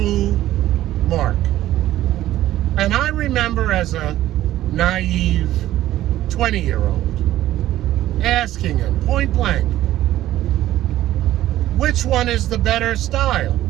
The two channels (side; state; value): left; quieter; 14.0 dB